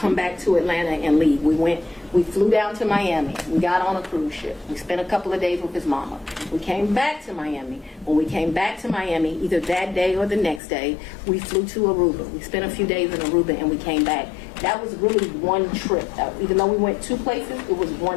back to Atlanta and leave. We flew down to Miami. We got on a cruise ship. We spent a couple of days with his mama. We came back to Miami. When we came back to Miami, either that day or the next day, we flew to Aruba. We spent a few days in Aruba and we came back. That was really one trip. Even though we went two places, it was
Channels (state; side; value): drops out; right; at 10.6 s